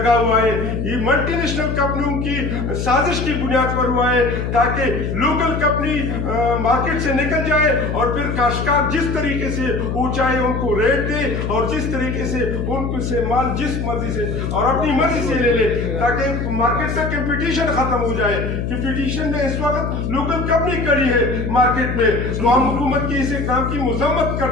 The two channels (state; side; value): noise; left; hum, 2 dB below the sound